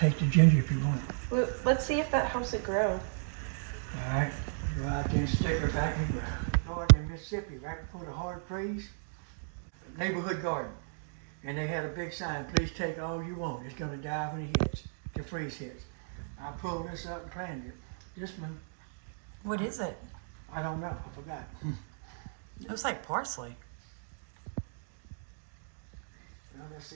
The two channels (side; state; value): left; silent; digital silence